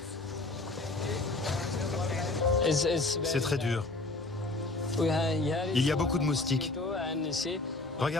C'est très dur. Il y a beaucoup de moustiques.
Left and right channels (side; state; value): right; quieter; 3.1 dB